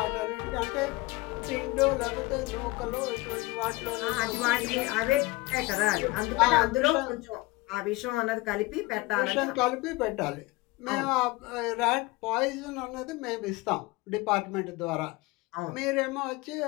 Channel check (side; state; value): right; quieter; 21.6 dB